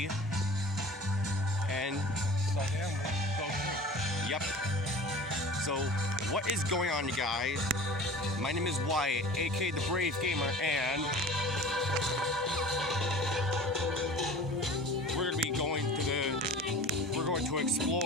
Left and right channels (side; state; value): both; normal; correlation 0.41